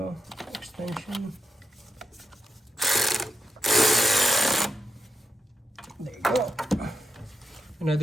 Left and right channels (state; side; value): normal; both; correlation 0.83